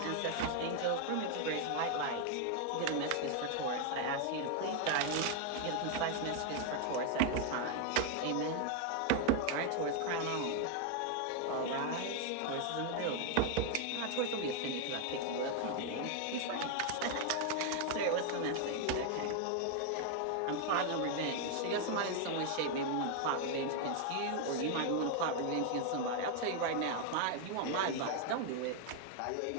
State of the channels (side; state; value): both; different; correlation 0.01